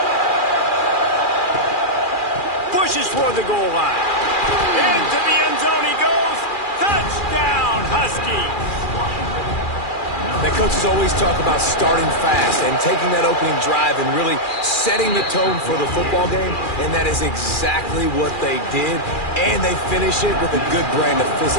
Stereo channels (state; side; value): late; right; 2.4 ms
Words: Pushes toward the goal line. Into the end zone he goes. Touchdown, Huskies. The coaches always talk about starting fast and taking that opening drive and really setting the tone for the football game, and that is exactly what they did, and they finish it with a good brand of